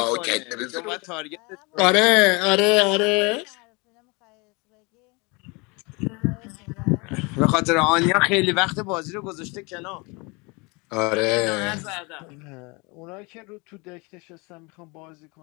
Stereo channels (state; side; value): quieter; right; 28.2 dB